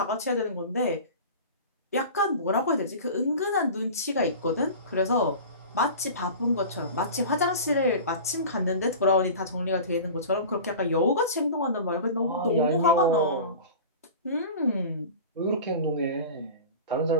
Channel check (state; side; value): inverted; both; correlation -0.35